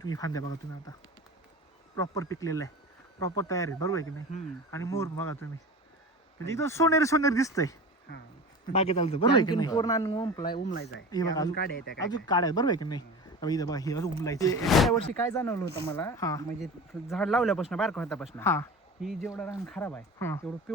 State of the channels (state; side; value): normal; both; correlation 0.33